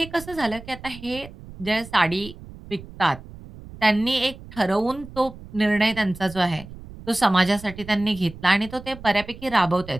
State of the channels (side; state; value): right; noise; rumble, 16 dB below the sound